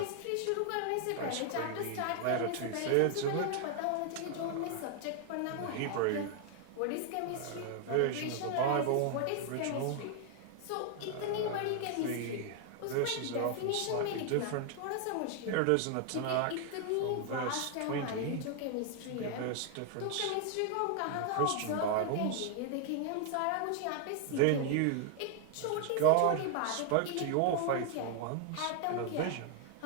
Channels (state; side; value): different; both; correlation 0.00